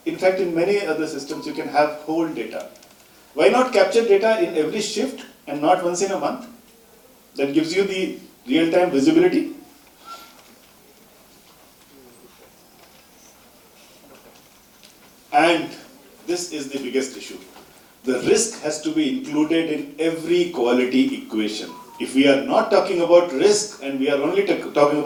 in fact, in many other systems, you can have whole data. Why not capture data in every shift and not once in a month? That gives you the real-time visibility. And this is the biggest issue. The risk has to be included in every quality equation. If we are not talking about risk and we are only talking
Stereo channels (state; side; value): identical; both; correlation 1.00